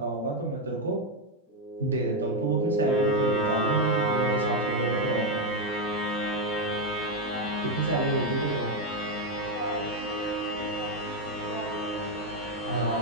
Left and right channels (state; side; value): normal; both; correlation 0.04